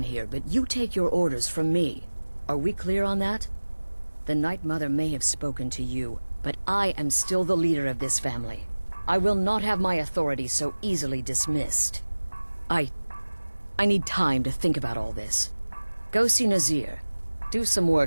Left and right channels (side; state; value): both; inverted; correlation -1.00